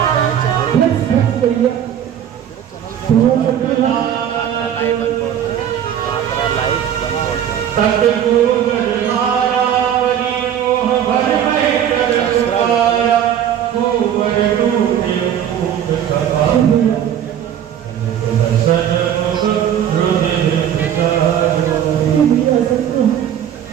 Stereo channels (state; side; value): quieter; left; 9.7 dB